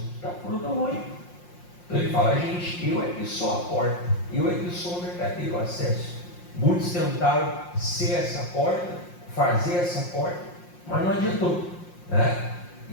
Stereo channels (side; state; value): right; late; 5.6 ms